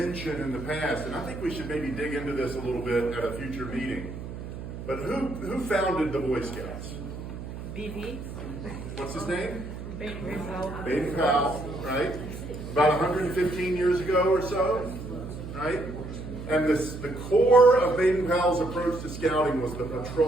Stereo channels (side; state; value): right; noise; hum, 9 dB below the sound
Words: in the past, and I think we should maybe dig into this a little bit at a future meeting, but who founded the Boy Scouts? BB. What's his name? Baden Powell. Baden Powell, right? About 115 years ago or so, right? And the core of Baden Powell's approach to scouting was the